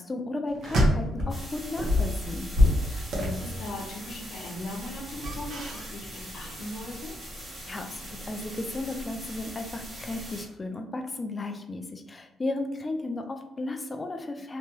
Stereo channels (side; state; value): both; normal; correlation 0.81